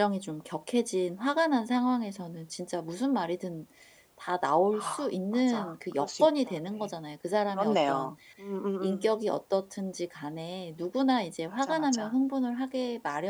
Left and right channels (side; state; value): both; identical; correlation 1.00